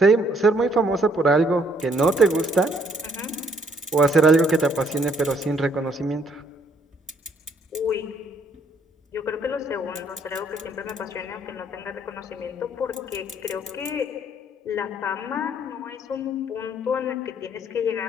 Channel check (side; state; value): both; normal; correlation 0.66